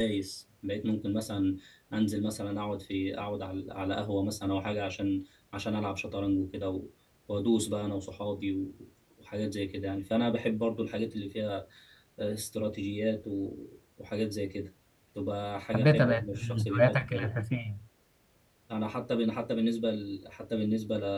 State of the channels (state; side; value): identical; both; correlation 1.00